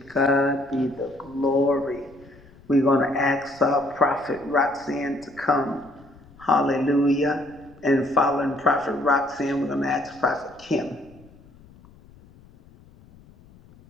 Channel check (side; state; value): left; noise; rumble, 25 dB below the sound